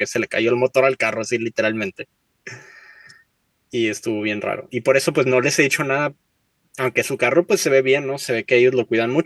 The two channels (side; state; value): both; identical; correlation 1.00